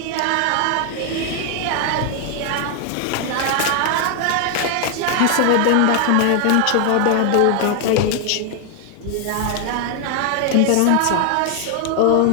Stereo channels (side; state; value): both; different; correlation 0.00